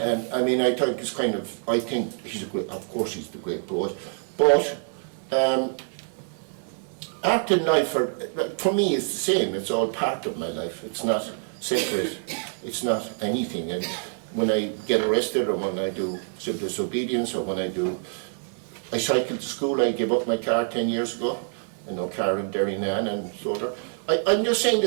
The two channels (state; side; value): silent; left; 58 dB below the other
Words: mean, I think it's kind of, I think he's a great, of course he's the great poet, but art and life, for me, is the same. It's all part of my life. It's not separate. It's not anything. And when I get arrested, or when I do civil disobedience, or when I cycle to school, I gave up my car 10 years ago. I know car in Derrynane and so on. I'm just saying